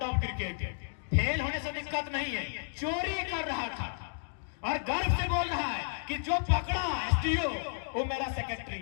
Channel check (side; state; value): right; silent; digital silence